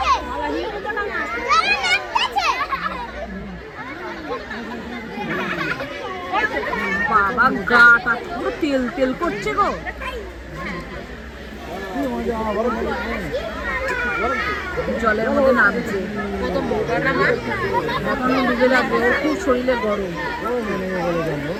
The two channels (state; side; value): identical; both; correlation 1.00